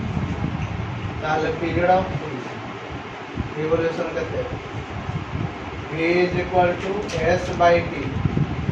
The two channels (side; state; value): both; identical; correlation 1.00